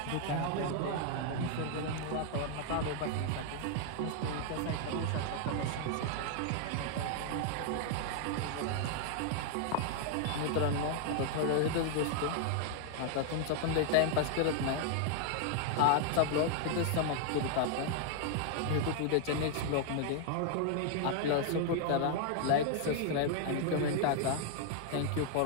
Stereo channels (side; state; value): both; different; correlation 0.00